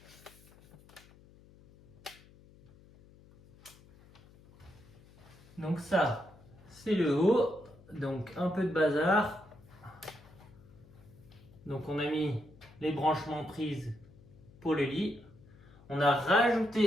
Donc ça, c'est le haut. Donc un peu de bazar. Donc on a mis les branchements prises pour le lit. On a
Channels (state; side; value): noise; left; hum, 24 dB below the sound